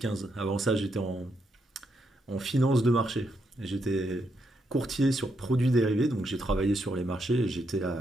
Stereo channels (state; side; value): normal; both; correlation 0.80